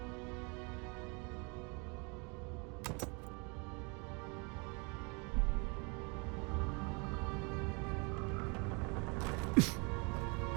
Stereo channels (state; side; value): quieter; left; 31.5 dB